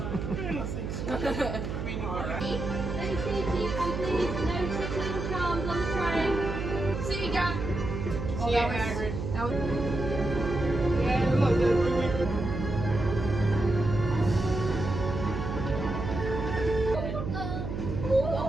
mean, alright. No CTO, please. No tickling charms on the train. See you, Jack. Oh, that was Hagrid. That was... Yeah, look,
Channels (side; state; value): right; noise; hum, 4 dB below the sound